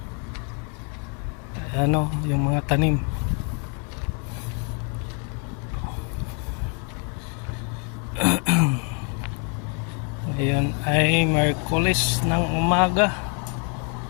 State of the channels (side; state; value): right; quieter; 38.7 dB